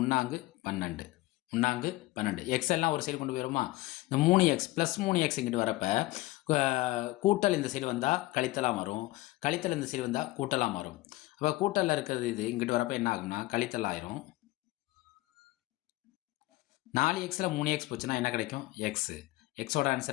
3 12. 3 12. எக்ஸ் எல்லாம் ஒரு சைடு கொண்டு போயிருமா? இந்த 3 எக்ஸ் ப்ளஸ் 3 எக்ஸ் இங்கிட்டு வரப்ப கூட்டல் இந்த சைடு வந்தால் கழித்தலாக வரும். கழித்தல் இந்த சைடு வந்தால் கூட்டலாக மாறும். அப்போ கூட்டலில் இருக்கிறது இது இங்கிட்டு வரப்போ என்ன ஆகும்னா கழித்தல் ஆயிரும். 4 எக்ஸில் 3 எக்ஸ் போச்சுன்னா என்ன கிடைக்கும்? எக்ஸு. எக்ஸோட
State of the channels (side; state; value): right; quieter; 19.1 dB